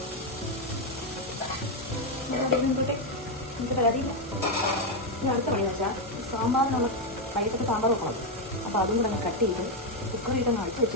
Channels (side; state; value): both; normal; correlation 0.05